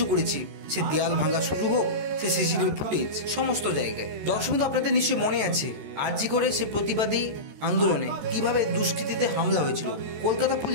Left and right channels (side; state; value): left; late; 13 ms